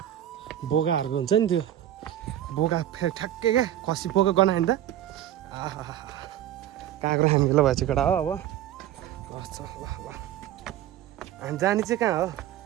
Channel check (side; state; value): left; quieter; 12.0 dB